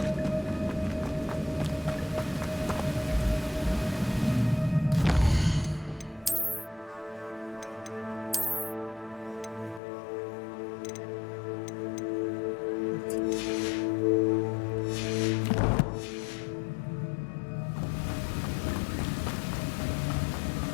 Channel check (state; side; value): drops out; right; at 9.8 s